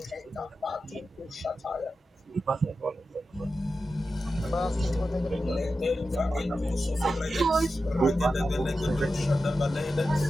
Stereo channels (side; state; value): both; normal; correlation 0.91